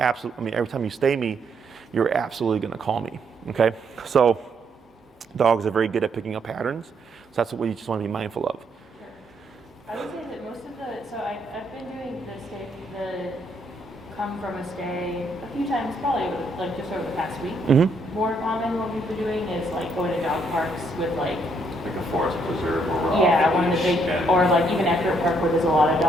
every time you stay me, you're absolutely gonna call me, okay? So dogs are very good at picking up patterns. So that's what you just wanna be mindful of. I would say that most of I've been doing the come from a stay a few times, probably like just over the past week. Mm-hmm. More common what we've been doing is like going to dog parks with like a forest preserve or one of the big, or like even after a park where there's a lot of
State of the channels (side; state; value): both; normal; correlation 0.72